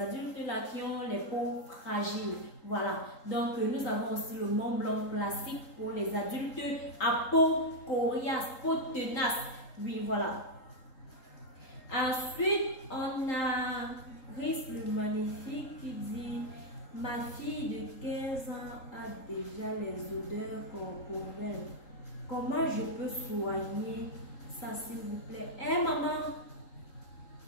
là qui ont les peaux fragiles. Voilà. Donc, nous avons aussi le Mont Blanc classique pour les adultes à peau coriace, peau tenace. Oui, voilà. Ensuite, on a Riz le magnifique qui dit ma fille de 15 ans a déjà les odeurs corporelles. Comment je peux soigner ça, s'il vous plaît? Eh, maman,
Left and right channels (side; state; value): right; late; 3.8 ms